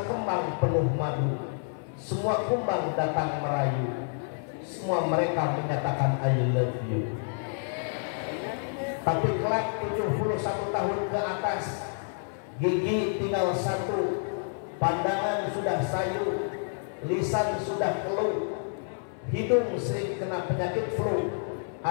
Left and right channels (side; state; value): right; silent; 57 dB below the other